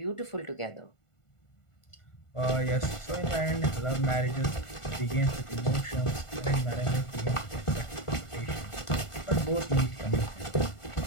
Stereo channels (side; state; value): right; late; 1.5 ms